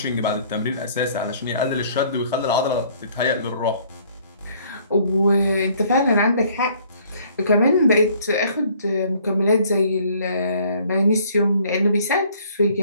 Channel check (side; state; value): both; inverted; correlation -0.59